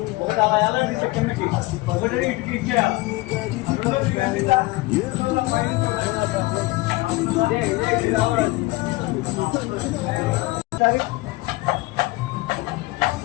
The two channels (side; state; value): right; quieter; 21.0 dB